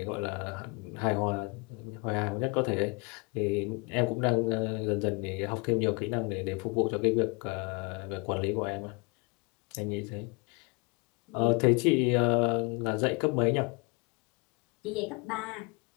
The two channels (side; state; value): right; quieter; 30.8 dB